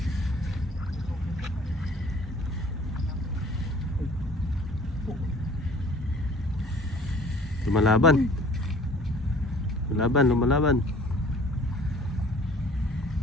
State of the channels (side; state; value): both; normal; correlation 0.51